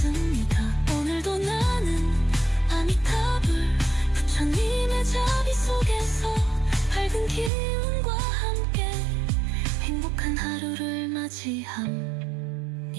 오늘도 나는 아미타불 부처님의 자비 속에서 밝은 기운과 함께 행복한 하루를 맞이합니다.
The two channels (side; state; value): left; drops out; at 7.5 s